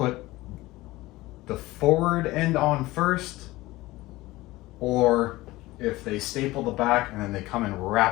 the forward end on first, or if they staple the back and then they come and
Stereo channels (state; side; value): quieter; right; 19.0 dB